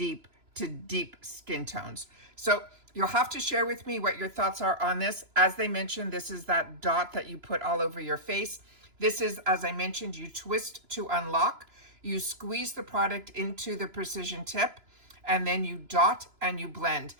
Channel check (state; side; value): late; left; 3.0 ms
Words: skin tones. So you'll have to share with me what your thoughts are on this. As they mentioned, this is that dot that you put all over your face. This is, as I mentioned, you twist to unlock. You squeeze the product into the precision tip, and then you dot and you blend.